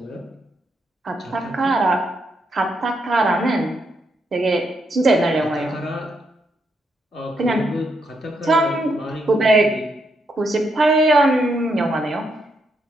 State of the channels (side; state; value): both; normal; correlation 0.78